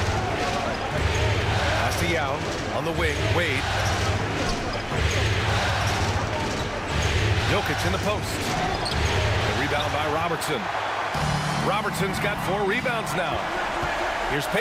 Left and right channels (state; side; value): identical; both; correlation 1.00